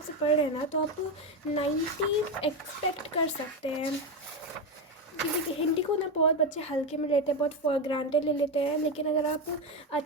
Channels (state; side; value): normal; both; correlation 0.12